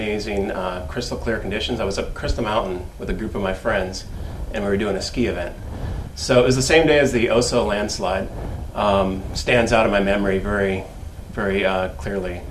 crystal clear conditions. I was up Crystal Mountain with a group of my friends, and we were doing a ski event. So it was the same day as the Oso landslide. Stands out in my memory very, very clearly.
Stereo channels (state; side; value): identical; both; correlation 1.00